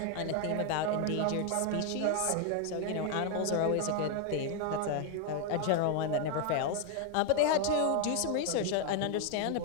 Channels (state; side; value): different; both; correlation 0.01